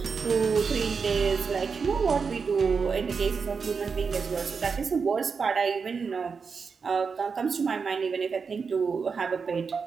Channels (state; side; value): quieter; left; 5.4 dB